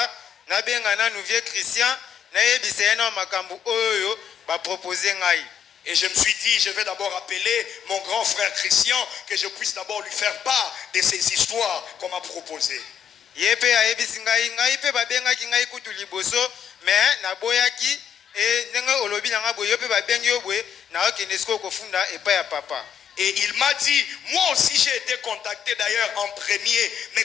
na benga na nouveau Christian na yebisa na makambu oyo ba proposer ngai. Et je me suis dit, je vais d'abord appeler mon grand frère Christian, que je puisse d'abord lui faire part de ces histoires qu'on m'a proposées. Yepe ayebisi ngai pe babengaki ngai kutu liboso mais na boyaki e ndenge olobi na ngabo yope babengi yobwe na okende siko kofunda epa ya papa. Et il m'a dit, moi aussi j'ai été contacté d'ailleurs en premier, mais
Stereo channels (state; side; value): quieter; right; 8.4 dB